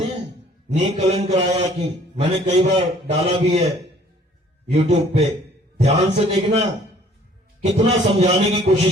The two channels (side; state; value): both; normal; correlation 0.56